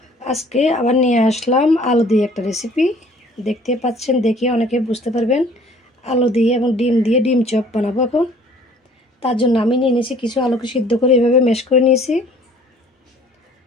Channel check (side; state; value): both; normal; correlation 0.54